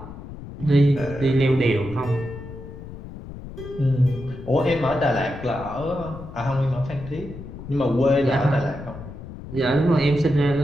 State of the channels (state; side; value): noise; left; rumble, 13 dB below the sound